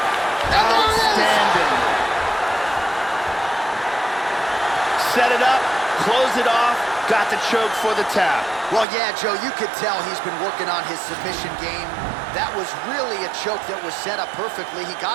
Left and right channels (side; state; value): left; drops out; at 8.8 s